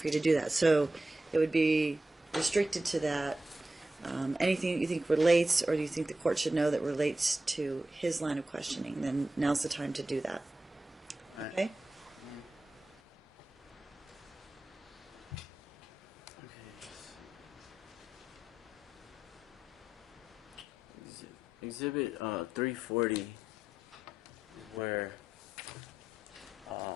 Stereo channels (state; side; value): normal; both; correlation 0.89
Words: you to do that. So, it would be restricted to that. Anything that you think relates or do you think the court should know that relates to his line of questioning, then now's the time to do that. Okay? Exhibit 340, where